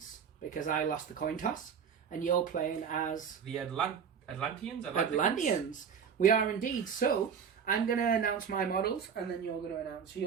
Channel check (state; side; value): quieter; left; 7.1 dB